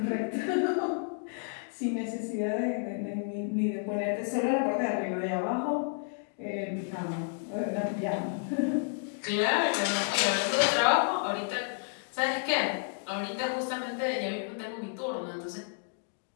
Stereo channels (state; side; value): silent; right; 57 dB below the other